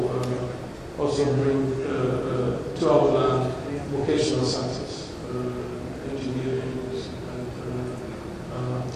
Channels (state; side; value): identical; both; correlation 1.00